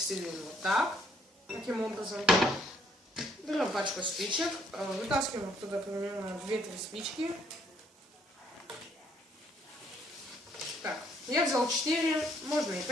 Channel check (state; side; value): normal; both; correlation 0.67